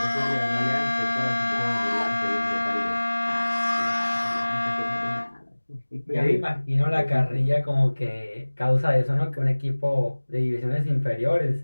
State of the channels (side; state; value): both; inverted; correlation -1.00